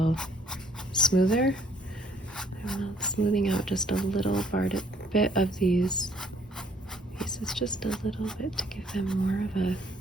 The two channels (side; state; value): both; normal; correlation 0.63